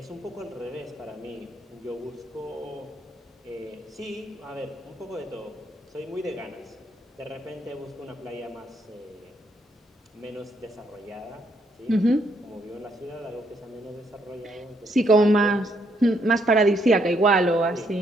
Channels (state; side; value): normal; both; correlation 0.73